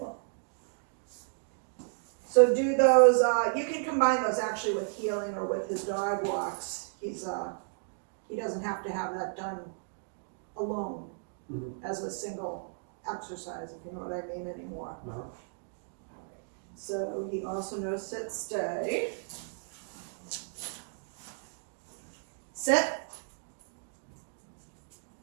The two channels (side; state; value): left; silent; digital silence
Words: So do those, you can combine those actually with healing or with his dog walks. He doesn't have to have that done alone as a single exercise, if you know what I mean anymore. So he also knows sit, stay. Sit.